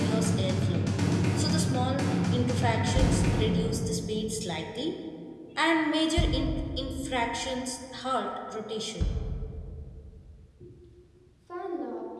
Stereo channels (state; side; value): identical; both; correlation 1.00